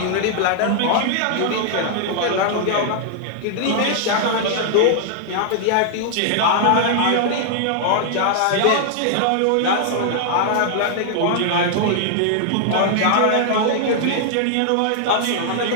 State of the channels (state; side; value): different; both; correlation -0.01